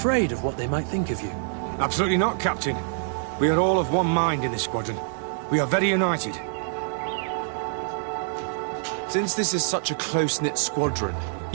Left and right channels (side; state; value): left; silent; digital silence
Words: of what they might think of you? Absolutely not, Captain. We are all of one mind in this squadron. We are very united. Since this is such a close-knit squadron,